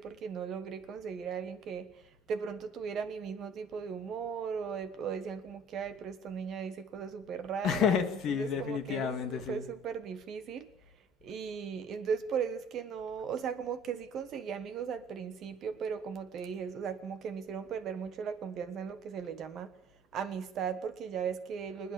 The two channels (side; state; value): both; normal; correlation 0.52